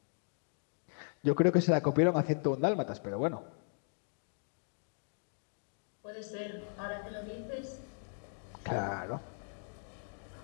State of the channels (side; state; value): right; silent; digital silence